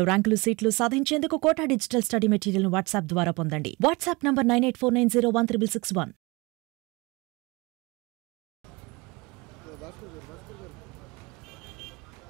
ర్యాంకులు సీట్లు సాధించేందుకు కోటా డిజిటల్ స్టడీ మెటీరియల్ ను వాట్సాప్ ద్వారా పొందండి. WhatsApp number 9849016661.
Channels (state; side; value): quieter; left; 25.3 dB